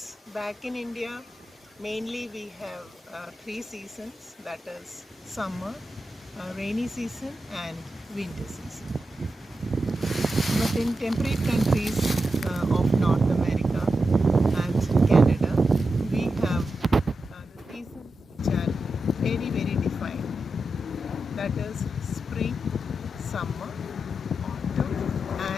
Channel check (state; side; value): normal; both; correlation 0.89